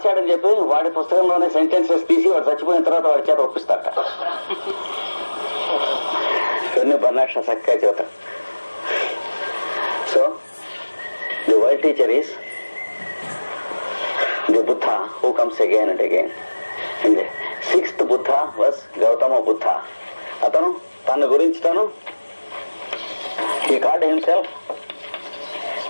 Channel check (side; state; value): both; inverted; correlation -1.00